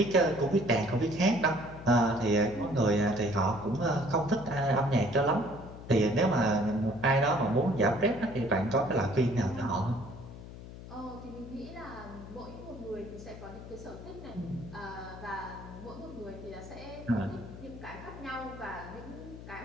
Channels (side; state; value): left; noise; hum, 13 dB below the sound